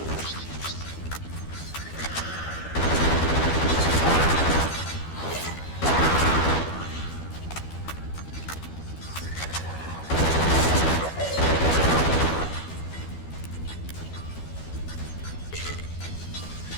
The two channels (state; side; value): late; right; 12 ms